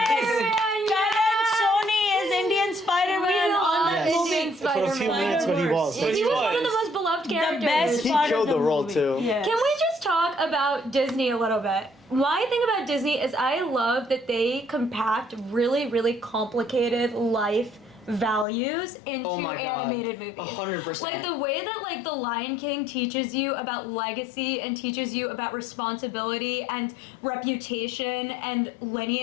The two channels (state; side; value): drops out; right; at 18.4 s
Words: Karan Sony is Indian Spider-Man on that Yes. movie. Indian For a few Spider-Man. minutes, but he was. But He he was one of was. the most beloved The characters. best He part killed of the role, movie. too. Yeah. Can we just talk about Disney a little bit. My thing about Disney is I love that they compact really, really complicated life values into Oh my God. animated movies. 100%. Like the way that like The Lion King teaches you about legacy and teaches you about responsibility and reputation and